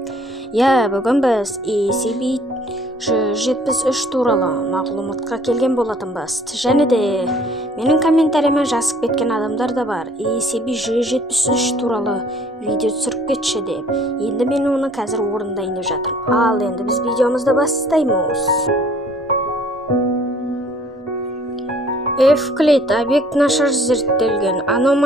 Бүгін біз ECB173 туралы мағлұматқа келген болатынбыз. Және де менің комментарияма жазып кеткен адамдар да бар. ECB173 туралы видео түсіріп кетші деп. Енді мен оны қазір орындайын деп жатырмын. Ал енді біз видеомызды бастаймыз. Эвклид объект нашар зерттелген,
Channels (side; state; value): both; normal; correlation 0.57